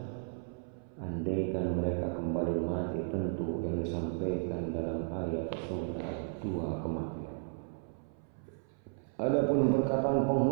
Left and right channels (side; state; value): left; silent; 55 dB below the other